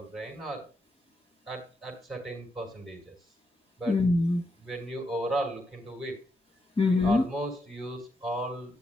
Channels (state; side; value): normal; both; correlation 0.82